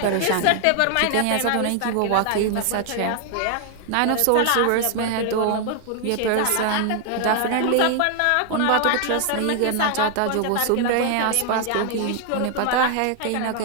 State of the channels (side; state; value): both; different; correlation 0.00